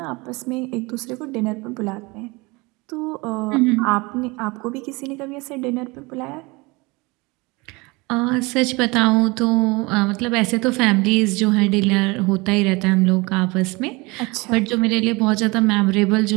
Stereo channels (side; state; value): left; quieter; 25.1 dB